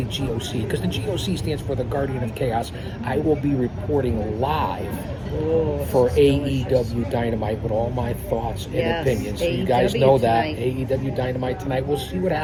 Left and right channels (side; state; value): both; identical; correlation 1.00